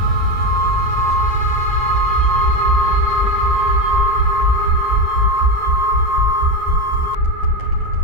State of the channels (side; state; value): left; late; 9.6 ms